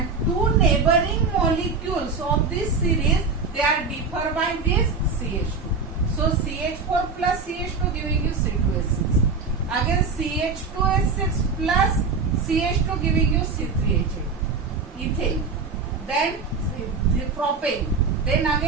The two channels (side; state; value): left; quieter; 4.5 dB